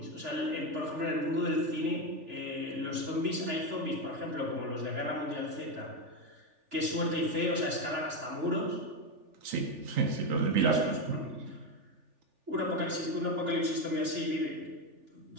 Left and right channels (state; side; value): late; left; 3.4 ms